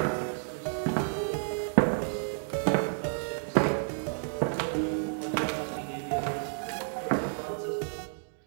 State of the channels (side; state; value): left; silent; digital silence